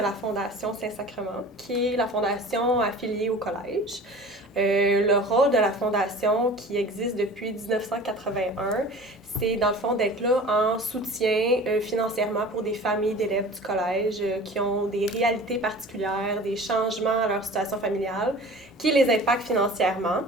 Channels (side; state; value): both; normal; correlation 0.41